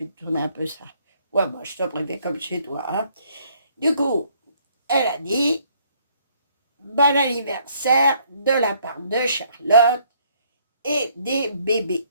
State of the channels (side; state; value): both; inverted; correlation -0.64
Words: te tourner un peu ça. Ouais, moi, je te préfère comme chez toi. Hein. Du coup, elle a dit bon anniversaire de la part de Charlotte et des bébés.